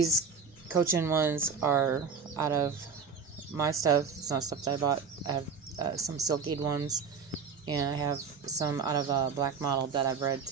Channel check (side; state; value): left; quieter; 5.7 dB